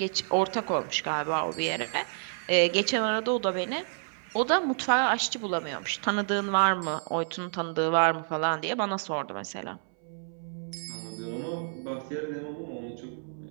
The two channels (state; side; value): silent; left; 58 dB below the other